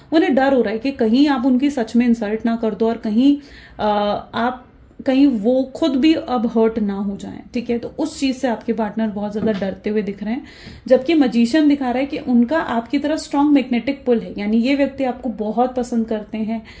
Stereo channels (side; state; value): both; identical; correlation 1.00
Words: उन्हें डर हो रहा है कि कहीं आप उनकी सच में इंसल्ट ना कर दो और कहीं वो खुद भी अब हर्ट ना हो जाएं, ठीक है। तो उस चीज से आपके पार्टनर बहुत ज्यादा डरते हुए दिख रहे हैं। जबकि मजीशियन दिखा रहा है कि उनका आपकी तरफ स्ट्रांग मैग्नेटिक पुल है, यानी ये व्यक्ति आपको बहुत पसंद करते हैं,